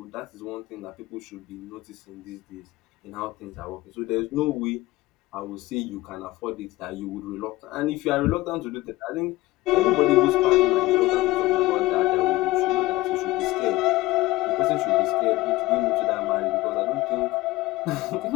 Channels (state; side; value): quieter; right; 18.8 dB